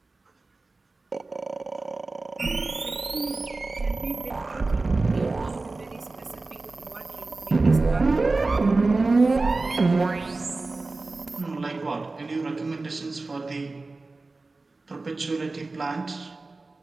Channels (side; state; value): left; quieter; 3.5 dB